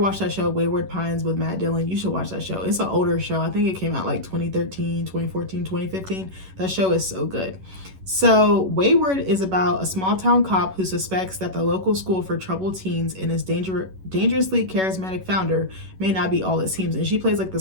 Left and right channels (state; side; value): late; left; 11 ms